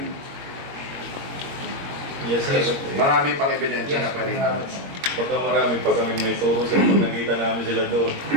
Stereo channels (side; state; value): left; late; 21 ms